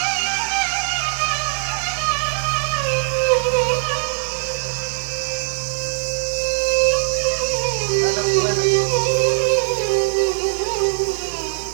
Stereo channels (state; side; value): silent; left; 62 dB below the other